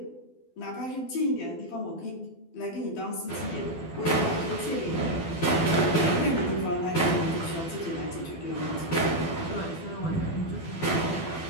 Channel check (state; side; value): late; right; 12 ms